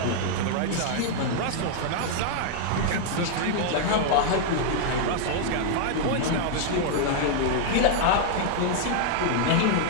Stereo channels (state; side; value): different; both; correlation -0.01